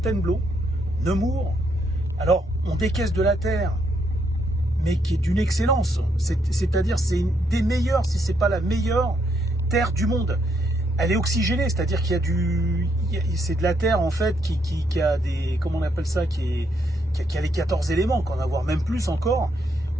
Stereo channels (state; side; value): normal; both; correlation 0.75